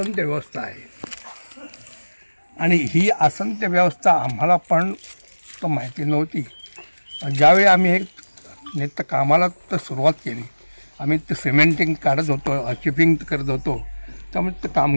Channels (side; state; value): both; inverted; correlation -1.00